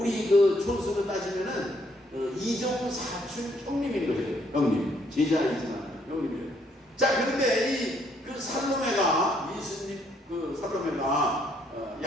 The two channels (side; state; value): both; normal; correlation 0.69